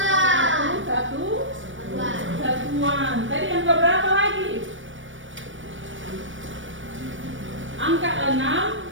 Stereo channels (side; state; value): left; late; 0.56 ms